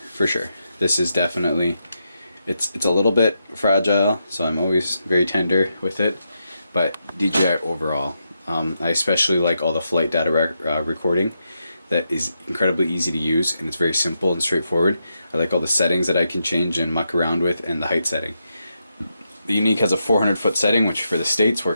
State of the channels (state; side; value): inverted; both; correlation -0.84